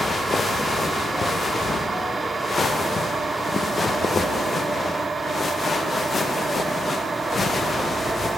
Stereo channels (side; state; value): both; normal; correlation 0.84